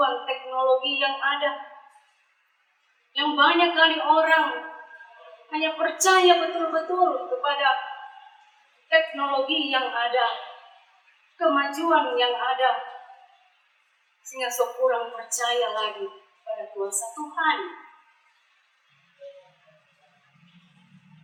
teknologi yang ada, yang banyak kali orang hanya percaya betul-betul kepada teknologi yang ada, kemajuan yang ada, sehingga sok kurang percaya lagi pada kuasa Tuhan.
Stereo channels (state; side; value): identical; both; correlation 1.00